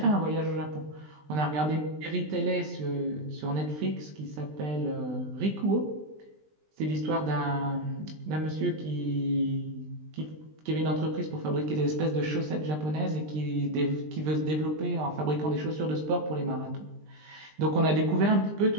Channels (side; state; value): left; late; 20 ms